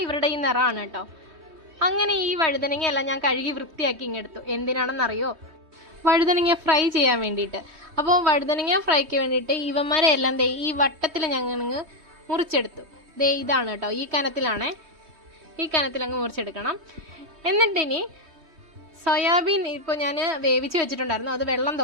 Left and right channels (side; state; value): left; late; 3.2 ms